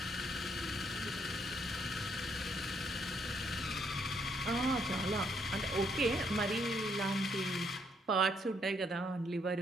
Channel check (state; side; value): normal; both; correlation 0.72